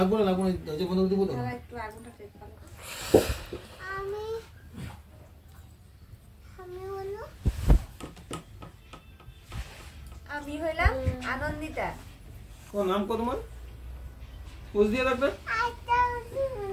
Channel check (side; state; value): both; identical; correlation 1.00